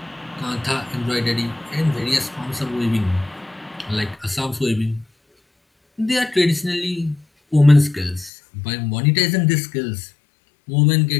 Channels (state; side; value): drops out; right; at 8.3 s